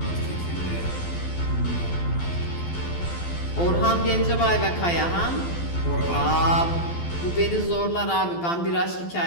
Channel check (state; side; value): late; right; 12 ms